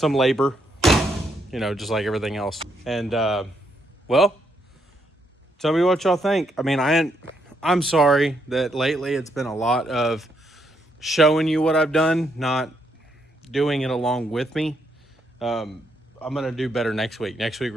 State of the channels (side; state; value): both; normal; correlation 0.76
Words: labor, you know, just like everything else. And well, tell me what y'all think. I mean, I'm sorry that lately it's been a lot of showing you what I've done, not doing it along with me. I'm going to do better next week. Next week,